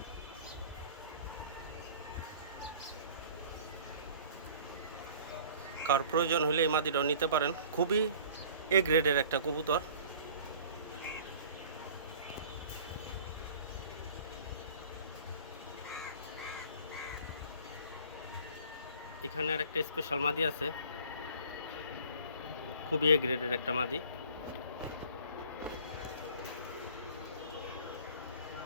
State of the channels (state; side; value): inverted; both; correlation -0.48